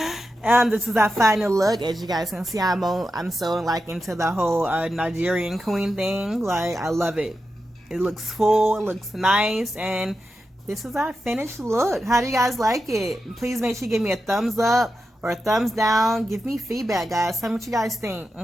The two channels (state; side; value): normal; both; correlation 0.89